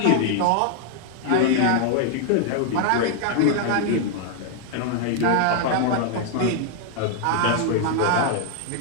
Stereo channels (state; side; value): different; both; correlation 0.00